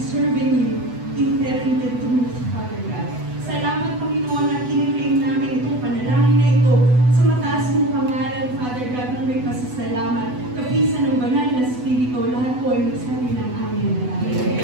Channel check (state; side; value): late; left; 8.1 ms